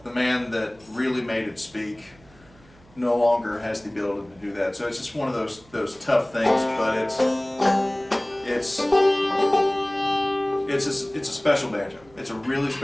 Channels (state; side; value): noise; right; hum, 27 dB below the sound